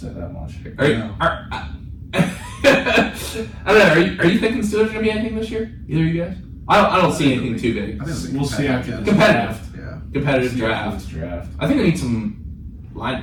that much. I don't know. Are you thinking Steelers are going to be anything this year? Either of you guys? I don't see anything too big. We'll see after the Competitive. draft. Competitive draft. I think they need some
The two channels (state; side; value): identical; both; correlation 1.00